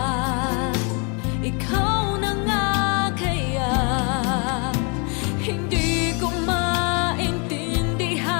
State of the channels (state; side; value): quieter; right; 34.6 dB